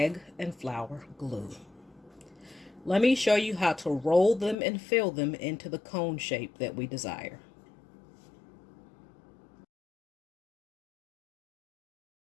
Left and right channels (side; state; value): right; drops out; at 4.5 s